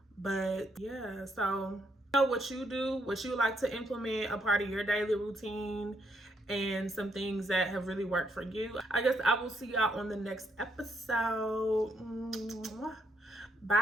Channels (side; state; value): both; normal; correlation 0.75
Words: But yeah, so know what you do, what you like to implement, a part of your daily routine, and some things that have really worked for you. I guess I will see y'all on the next episode.